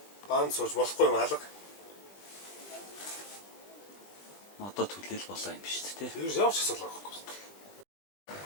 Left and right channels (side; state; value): right; late; 20 ms